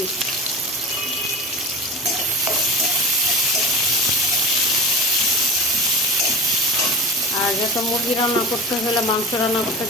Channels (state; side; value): normal; both; correlation 0.30